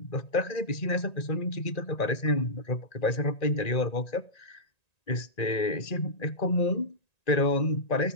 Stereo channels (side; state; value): right; late; 1.9 ms